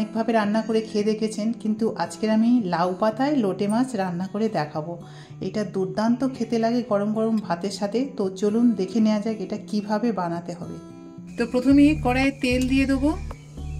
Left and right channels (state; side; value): identical; both; correlation 1.00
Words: রান্না করে খেয়ে দেখেছেন, কিন্তু আজকে আমি লাউ পাতায় লোটে মাছ রান্না করে দেখাবো। এটা দুর্দান্ত খেতে লাগে গরম গরম ভাতের সাথে। তো চলুন দেখে নেওয়া যাক এটা কিভাবে বানাতে হবে। তো প্রথমে কড়াইয়ে তেল দিয়ে দেবো।